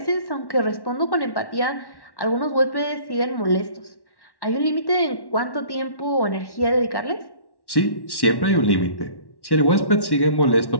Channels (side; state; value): right; late; 1.1 ms